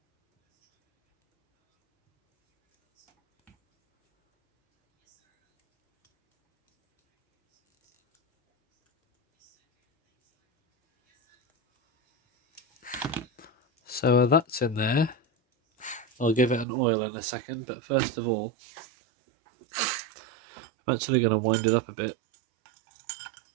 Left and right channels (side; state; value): left; drops out; at 16.7 s